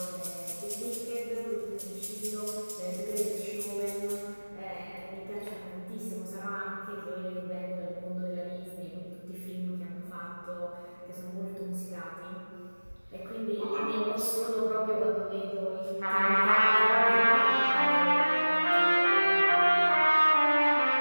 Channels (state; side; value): inverted; both; correlation -1.00